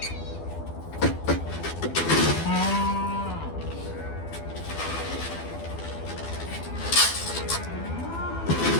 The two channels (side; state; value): right; late; 12 ms